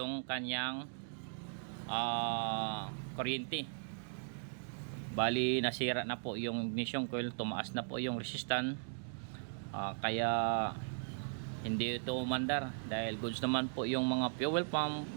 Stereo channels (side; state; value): left; silent; digital silence